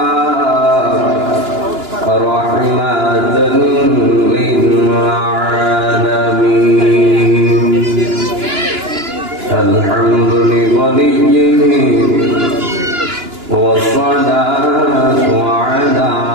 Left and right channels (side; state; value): left; late; 2.9 ms